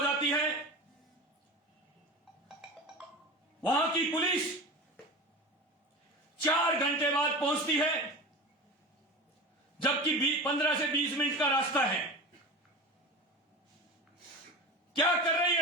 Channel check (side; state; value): both; normal; correlation 0.30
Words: है। वहां की पुलिस 4 घंटे बाद पहुंचती है, जबकि 15 से 20 मिनट का रास्ता है। क्या कर रही